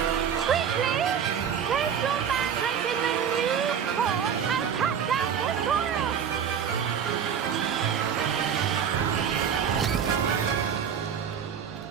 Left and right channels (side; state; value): left; quieter; 7.9 dB